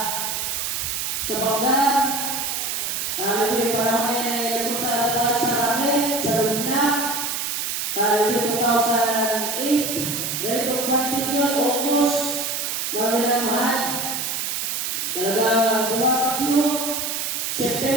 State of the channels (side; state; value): right; noise; hiss, 2 dB below the sound